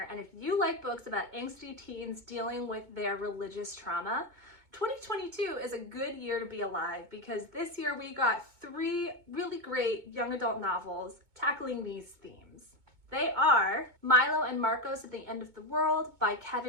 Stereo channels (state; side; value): late; left; 2.2 ms